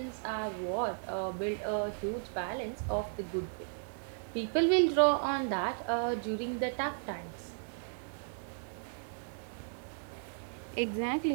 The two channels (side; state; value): left; silent; digital silence